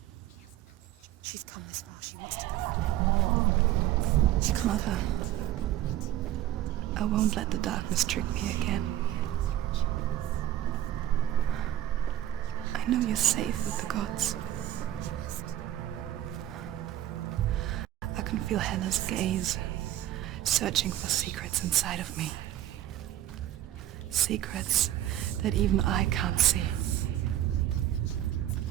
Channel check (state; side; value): quieter; left; 13.0 dB